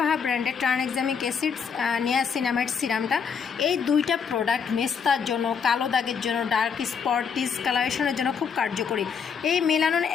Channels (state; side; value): quieter; right; 6.5 dB